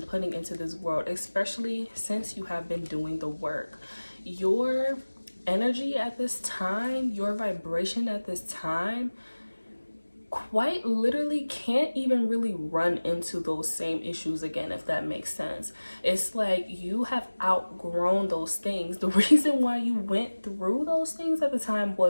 putting into this world, especially since you have been doing the work. Your energy at this time, your vibration at this time, quite literally can't even really run into those same issues again, if that makes sense. It's like you have outgrown those things. The reason why you went through those things at the time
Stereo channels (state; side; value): inverted; both; correlation -1.00